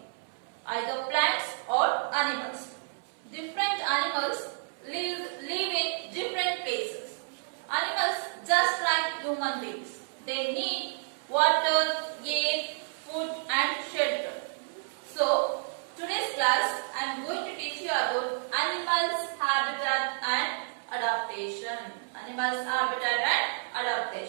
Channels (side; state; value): left; silent; 58 dB below the other